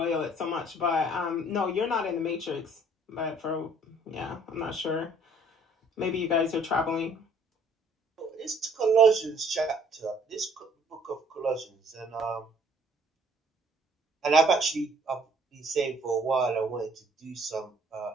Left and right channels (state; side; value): normal; both; correlation 0.60